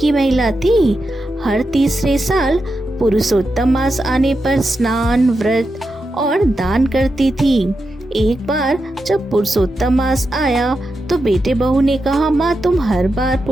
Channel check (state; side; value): normal; both; correlation 0.88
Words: महिला थी। हर तीसरे साल पुरुषोत्तम मास आने पर स्नान, व्रत और दान करती थी। एक बार जब पुरुषोत्तम मास आया तो बेटे बहू ने कहा, माँ तुम हर बार